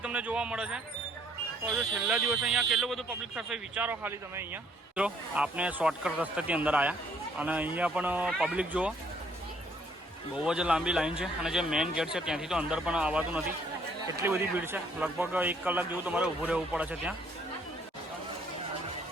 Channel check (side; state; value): both; normal; correlation 0.65